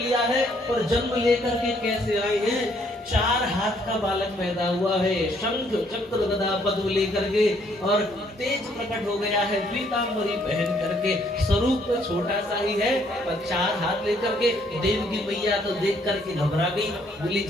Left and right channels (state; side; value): normal; both; correlation 0.67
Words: है। और जन्म लेकर के कैसे आए हैं? 4 हाथ का बालक पैदा हुआ है, शंख चक्र गदा पद्म लेकर के, और तेज प्रकट हो गया है पीतांबरी पहन करके। स्वरूप तो छोटा सा ही है, पर 4 हाथ लेकर के देवकी मैया तो देख करके घबरा गई, बोली